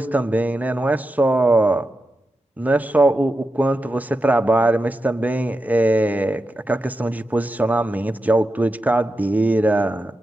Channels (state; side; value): normal; both; correlation 0.89